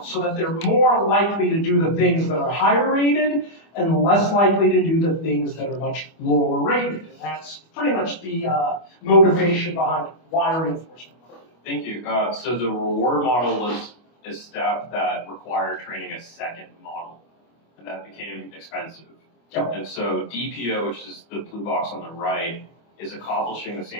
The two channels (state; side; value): late; right; 25 ms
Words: so that they're more likely to do the things that are higher rated and less likely to do the things that are much lower rated. And that's pretty much the motivation behind why reinforcement. Thank you. So the reward model was a step that required training a second model, and that became expensive. Yep. And so DPO, which is the blue box on the right, is accomplishing the